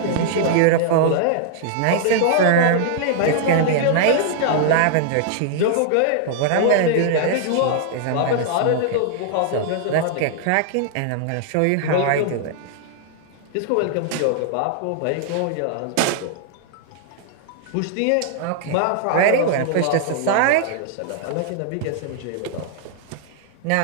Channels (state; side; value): different; both; correlation -0.01